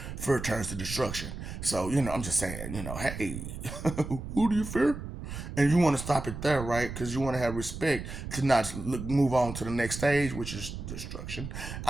Fear turns to destruction. So, I'm just saying. Hey, who do you fear? And you want to stop it there, right? Because you want to have respect to not move on to the next stage, which is destruction.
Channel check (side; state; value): right; noise; rumble, 8 dB below the sound